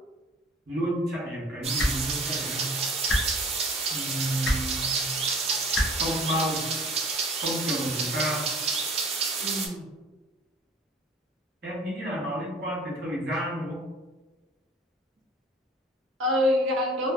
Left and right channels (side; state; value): both; normal; correlation 0.48